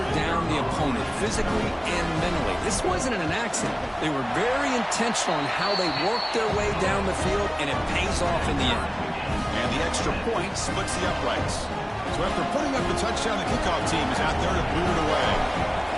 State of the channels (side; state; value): both; identical; correlation 1.00